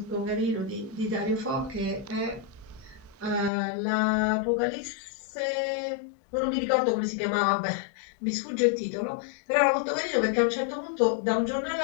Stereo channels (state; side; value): drops out; right; at 3.5 s